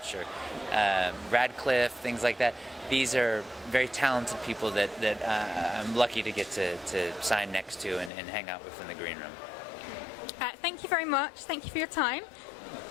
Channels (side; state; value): right; drops out; at 8.1 s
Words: or Radcliffe, things like that. These are very talented people that I'm lucky to get to sign next to and hang out with in the green room. Thank you very much. Thank you for your time.